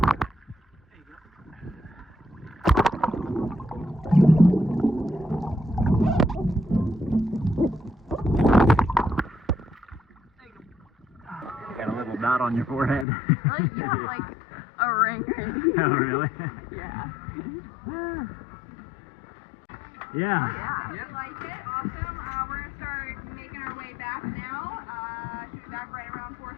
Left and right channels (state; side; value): drops out; right; at 13.1 s